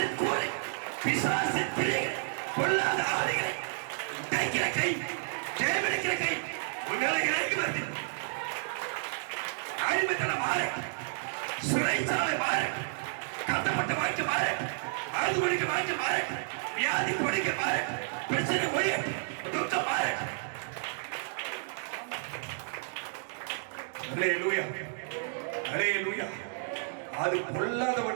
கூரை, பிசாசின் பிள்ளைகள், பொல்லாத ஆதிகளை தைக்கிற கை, ஜெயமெடுக்கிற கை உங்களை இறங்கி வருது. அடிமைத்தனம் மாறு, சிறைச்சாலை மாறு, கட்டப்பட்ட வாழ்க்கை மாறு, அழுது ஒழிக்க வாழ்க்கை மாறு, வியாதி ஒழிக்க மாறு, பிரச்சனை ஒழிய துக்கம் மாறு. அல்லேலூயா, அல்லேலூயா. அது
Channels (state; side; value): silent; left; digital silence